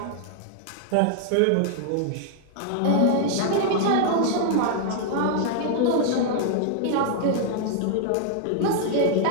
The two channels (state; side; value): different; both; correlation 0.00